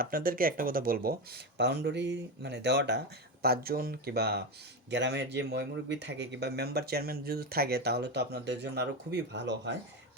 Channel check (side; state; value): both; normal; correlation 0.16